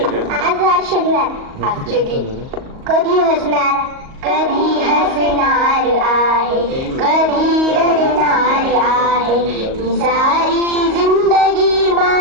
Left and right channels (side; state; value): left; late; 38 ms